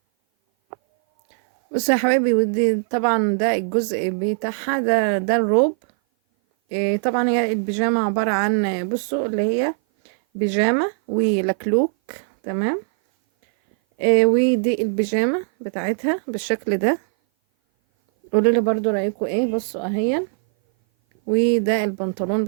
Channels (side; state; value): left; silent; 57 dB below the other